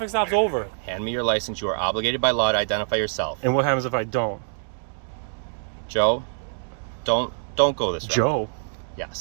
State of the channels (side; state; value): left; silent; digital silence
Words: stop's over. Hand me your license. You are obligated by law to identify yourself. And what happens if I don't? Joe, don't go this route. Joe?